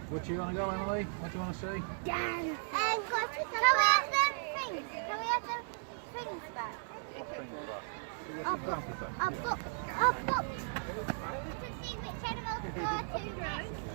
Where do you want to go, Emily? What do you want to see? Can we have the things? Can we have the things back? I've got to see which animals to go to next.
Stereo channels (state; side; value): silent; left; digital silence